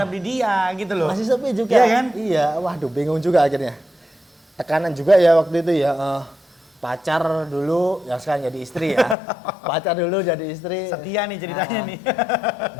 di dia gitu loh. Masih sepi juga. Iya kan? Iya, waduh bingung juga akhirnya. Tekanan juga ya waktu itu ya. Pacar dulu, ya sekarang jadi istri ya. Pacar dulu jadi istri. Setia nih ceritanya nih.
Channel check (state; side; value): drops out; right; at 9.2 s